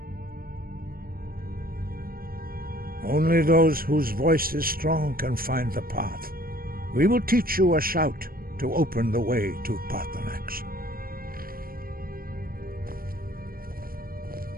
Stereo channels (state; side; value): late; left; 0.42 ms